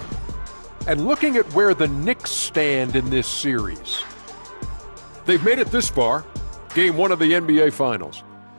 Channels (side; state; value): both; inverted; correlation -1.00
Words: And looking at where the Knicks stand in this series. They've made it this far. Game 1 of the NBA Finals.